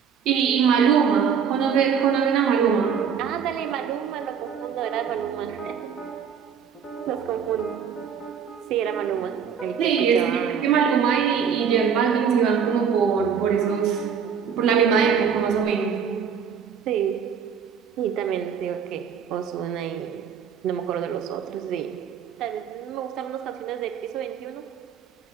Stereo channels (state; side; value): quieter; left; 7.1 dB